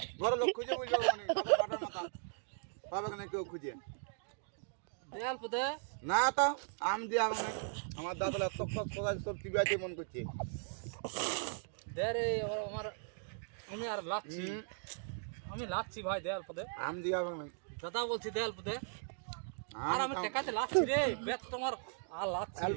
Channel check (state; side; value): silent; left; digital silence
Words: ঘরের লোক খুঁজে বলবে কোনি কাটার মাথা পাবে না কেউ খুঁজে। দেয়াল পদে না তো আম দিয়ে মানে আমার দাঁতলা তক তক কোথায় তোর টিভি আছে মন করছে। দে রে আমার, আমি আর লাচ্ছি, আমি লাচ্ছি ভাই দেয়াল পদে। আম দিয়ে হবে না দাদা বলছি দেয়াল পদে। আর আমি টেকাতে লাচ্ছি রে, বেত তোমার আর লাচ্ছি। আল